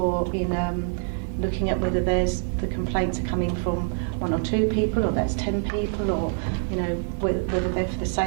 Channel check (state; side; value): silent; left; 56 dB below the other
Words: in looking at whether the complaints are coming from 1 or 2 people, or that's 10 people, or you know whether they're for the